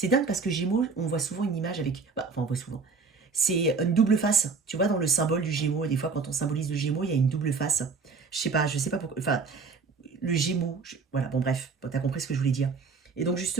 dingue parce que Gémeaux, on voit souvent une image avec... on voit souvent. C'est une double face. Tu vois, dans le symbole du Gémeaux, des fois, quand on symbolise le Gémeaux, il y a une double face. Je sais pas pourquoi... Enfin, le Gémeaux, voilà, bon bref, t'as compris ce que je voulais dire. Et donc,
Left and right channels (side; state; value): left; quieter; 4.8 dB